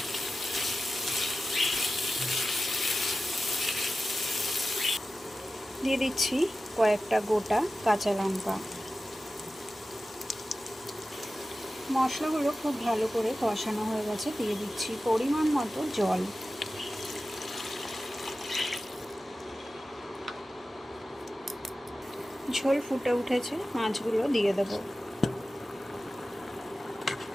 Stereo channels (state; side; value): normal; both; correlation 0.94